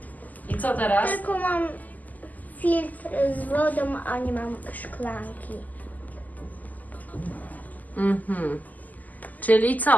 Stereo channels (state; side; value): late; right; 0.080 ms